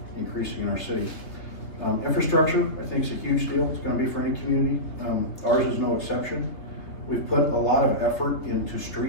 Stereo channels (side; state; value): right; late; 3.5 ms